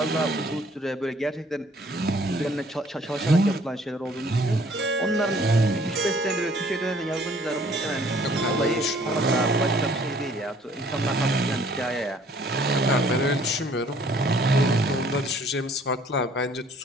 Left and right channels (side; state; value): both; normal; correlation 0.58